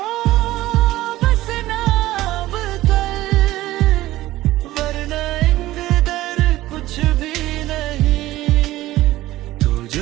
बस नाम कल, वरना इंतजार कुछ भी नहीं। तू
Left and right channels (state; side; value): quieter; left; 16.2 dB